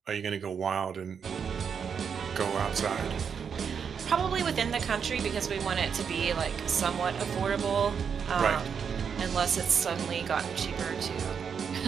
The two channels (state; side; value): quieter; left; 6.8 dB